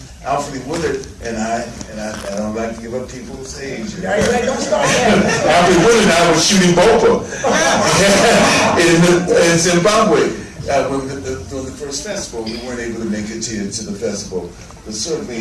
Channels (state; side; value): identical; both; correlation 1.00